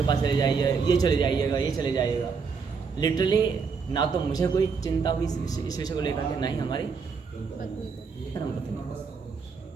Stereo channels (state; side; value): quieter; left; 5.4 dB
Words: पास चले जाइए, ये चले जाइएगा, ये चले जाइएगा। लिटरली ना तो मुझे कोई चिंता हुई इस विषय को लेकर के, ना ही हमारी धर्मपत्नी,